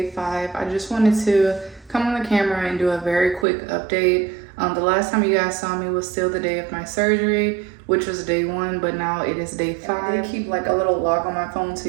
5. I just wanted to come on the camera and do a very quick update. The last time you guys saw me was still the day of my surgery, which was day 1, but now it is day 5. I did keep like a little log on my phone so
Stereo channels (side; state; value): left; drops out; at 3.5 s